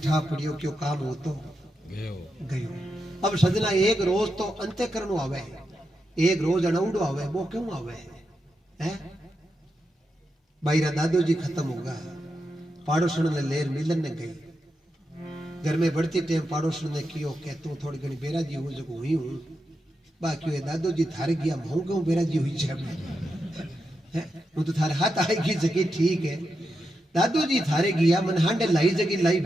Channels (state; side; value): normal; both; correlation 0.86